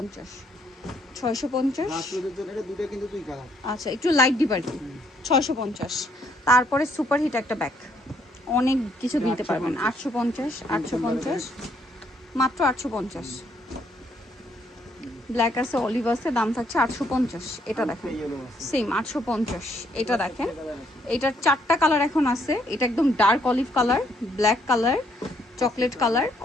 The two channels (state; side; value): normal; both; correlation 0.69